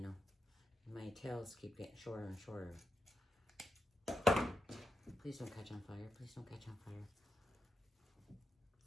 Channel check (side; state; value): both; normal; correlation 0.86